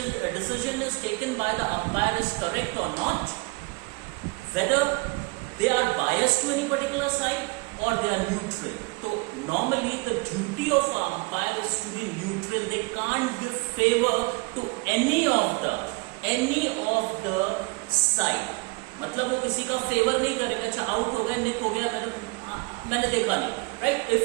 is taken by the umpire is correct or not, whether they are biased to any particular side or they are neutral. So normally the duty of an umpire is to be neutral. They can't give favor to any of the side. मतलब वो किसी का favour नहीं करेगा. अच्छा out हो गया, निक हो गया, मैंने देखा नहीं, right?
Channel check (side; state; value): left; quieter; 28.5 dB